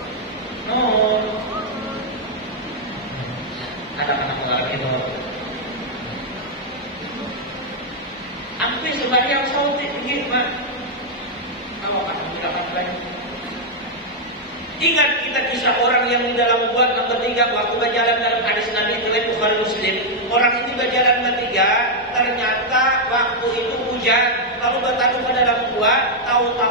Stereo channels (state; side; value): normal; both; correlation -0.02